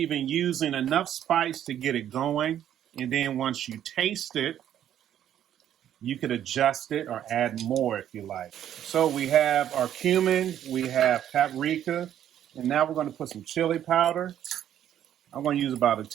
in using enough spice to get it going. And then once you taste it, You could adjust it or add more if you like. So we have our cumin, we have paprika, and now we're going to put some chili powder. I'm going to use about a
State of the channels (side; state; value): left; quieter; 10.7 dB